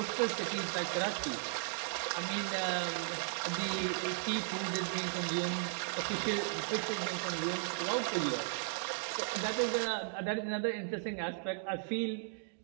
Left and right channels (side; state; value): left; silent; digital silence